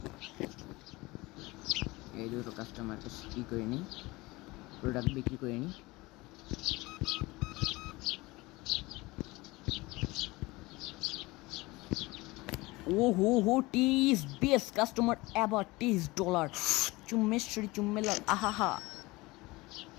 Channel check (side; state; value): right; quieter; 21.8 dB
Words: এই দুটো কাস্টমারকে কি করে নিই, প্রোডাক্ট বিক্রি করে নিই। হো টিস বেস্ট কাস্টমার এভার, $30 চুম্মেশ্বরী চুম্মেলাল, আহাহা।